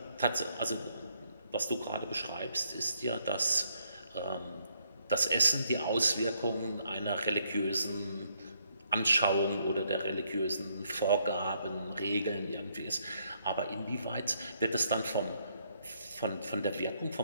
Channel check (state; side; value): inverted; both; correlation -0.73